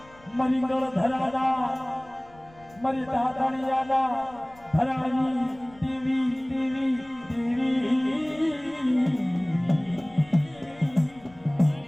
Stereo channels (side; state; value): left; noise; rumble, 25 dB below the sound